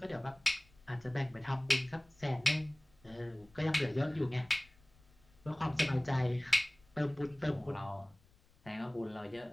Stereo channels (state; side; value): noise; left; rumble, 29 dB below the sound